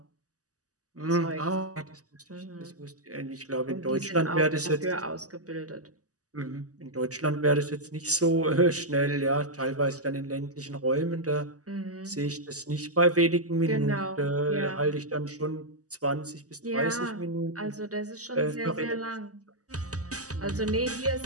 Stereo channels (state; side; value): late; left; 0.67 ms